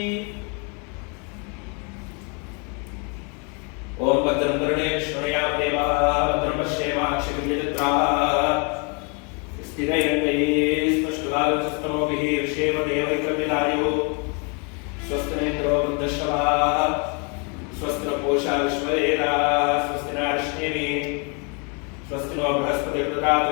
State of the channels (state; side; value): quieter; right; 35.1 dB